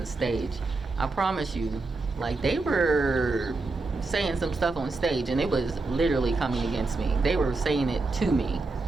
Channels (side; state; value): left; quieter; 3.5 dB